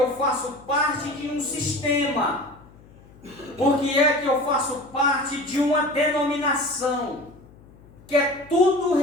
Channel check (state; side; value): noise; left; hum, 24 dB below the sound